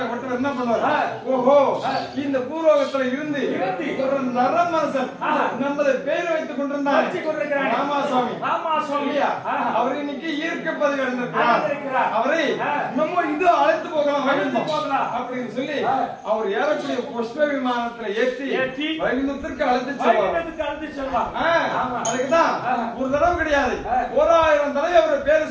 என்ன பண்ணுவார்? ஓஹோ, இந்த பூலோகத்துல இருந்து ஒரு நரமனசன் நமது பேர் வைத்துக் கொண்டிருந்தார் ராமாசுவாமி. அவர் இன்னைக்கு ஈர்க்க பதவி அடைந்திருக்கிறார். அவரை நம்ம இது அழைத்து போகலாம் அப்படின்னு சொல்லி அவர் ஏறக்கூடிய புஷ்ப விமானத்துல ஏற்றி வைகுந்தத்திற்கு அழைத்து செல்வார். அதுக்குதான் ஒரு தடவை கிடையாது, 1000 தடவை அவர் பேரை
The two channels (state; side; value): identical; both; correlation 1.00